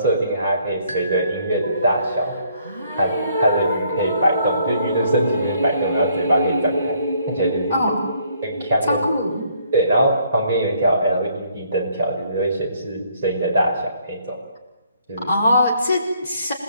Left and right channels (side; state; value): both; inverted; correlation -0.66